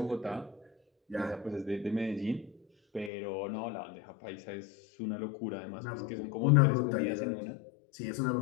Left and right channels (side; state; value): right; drops out; at 3.1 s